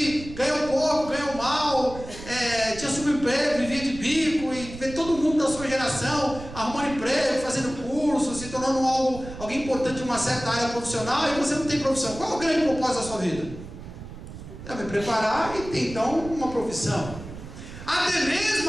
ganhou pouco, ganhou mal, tinha subemprego, vivia de bico, e vê todo mundo da sua geração arrumando emprego, fazendo curso, se tornando alguém importante em uma certa área profissional, e você não tem profissão, qual é o grande propósito da sua vida? me preparar e ter então uma profissão. Até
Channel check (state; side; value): noise; right; rumble, 13 dB below the sound